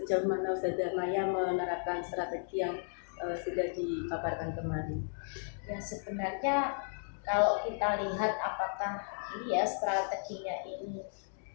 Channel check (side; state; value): right; silent; digital silence